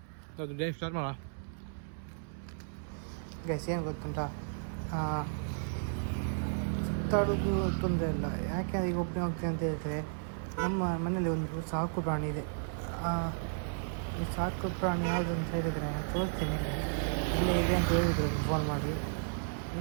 ಅದು ಡೇ ಸ್ಟಾರ್ಟ್ ಮಾಡೋಣ. ಗೈಸ್ ಏನು ಗೊತ್ತುಂಟ, ಸುತ್ತಾಡೋದು ತೊಂದರೆ ಇಲ್ಲ. ಯಾಕೆ ಈಗ ಒಬ್ಬನೇ ಹೋಗ್ತೀನಿ ಅಂತ ಹೇಳಿದ್ರೆ, ನಮ್ಮ ಮನೇಲಿ ಒಂದು ಸಾಕು ಪ್ರಾಣಿ ಇದೆ. ಈ ಸಾಕು ಪ್ರಾಣಿ ಯಾವುದು ಅಂತ ಹೇಳಿದರೆ ತೋರಿಸ್ತೀನಿ. ಇಲ್ಲೇ ಇದೆ ಅಂತ ಹೇಳಿದ್ರು ಫೋನ್ ಮಾಡಿ.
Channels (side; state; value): left; silent; 55 dB below the other